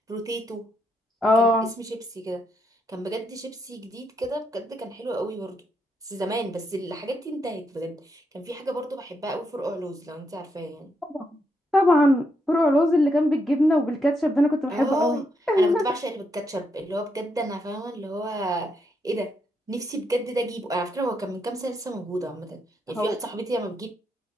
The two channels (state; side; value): normal; both; correlation 0.79